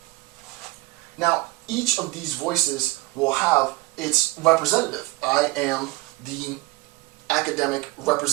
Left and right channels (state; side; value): quieter; left; 20.7 dB